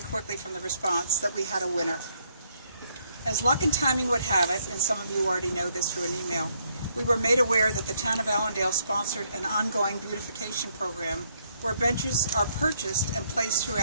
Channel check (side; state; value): both; inverted; correlation -0.72